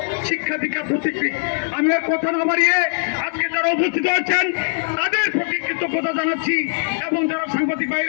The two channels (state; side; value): silent; right; digital silence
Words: শিক্ষা দীক্ষা প্রতীকী। আমি আর কথা না বাড়িয়ে আজকে যারা উপস্থিত আছেন তাদের প্রতি কৃতজ্ঞতা জানাচ্ছি এবং যারা সাংবাদিক